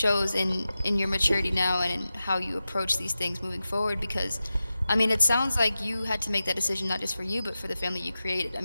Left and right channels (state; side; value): inverted; both; correlation -0.93